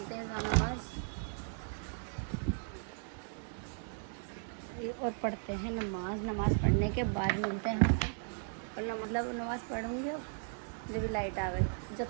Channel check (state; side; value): silent; left; 54 dB below the other